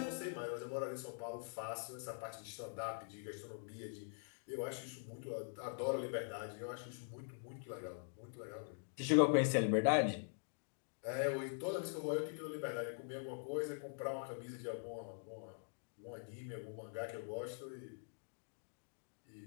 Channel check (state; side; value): silent; right; digital silence